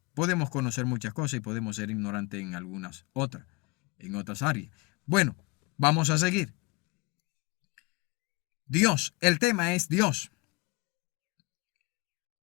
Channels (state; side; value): quieter; right; 26.8 dB